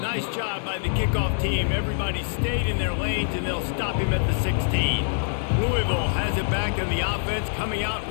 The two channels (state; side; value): silent; right; digital silence